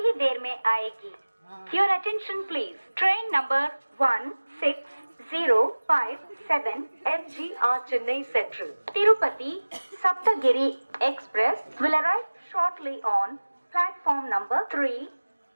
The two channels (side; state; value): both; inverted; correlation -1.00